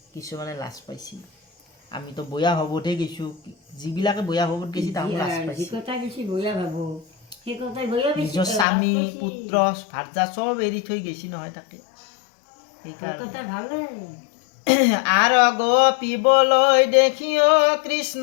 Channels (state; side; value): drops out; right; at 8.7 s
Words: কিছুমানে লাজ পাইছি। আমিতো বয়া ভাৱতহে গৈছোঁ, যিবিলাকে বয়া ভাৱত গৈছে তাহোঁ লাজ পাইছি। নিজৰ স্বামী পুত্ৰ ভাৰ্যা চব এৰি থৈ গৈছি নহয় তাতে। আৰু গোপীবলৈ দেখিও